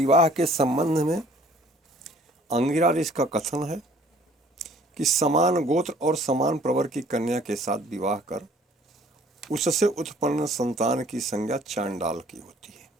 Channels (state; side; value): normal; both; correlation 0.55